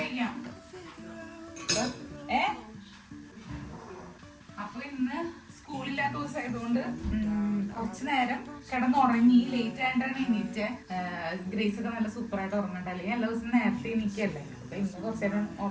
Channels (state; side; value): identical; both; correlation 1.00